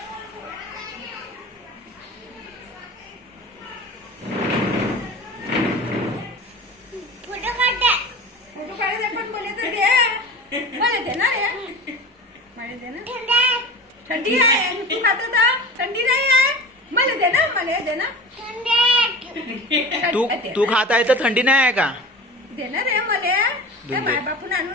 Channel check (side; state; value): both; normal; correlation 0.35